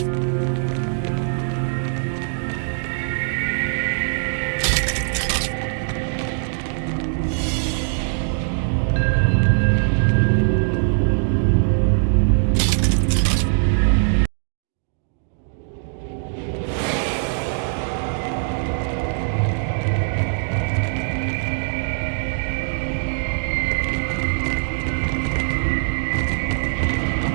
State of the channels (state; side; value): silent; left; 58 dB below the other